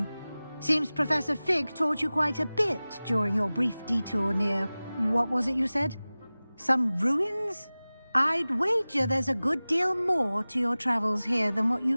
Seems Professor Fig taught you quite a bit during your brief detour near... what was it you said? Some ruins? I'd wager there's a good deal more to your travels here than what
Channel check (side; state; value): both; inverted; correlation -0.98